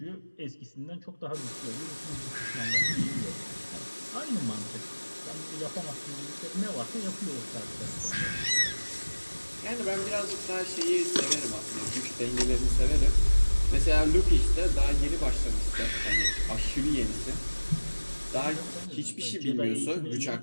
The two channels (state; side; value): inverted; both; correlation -1.00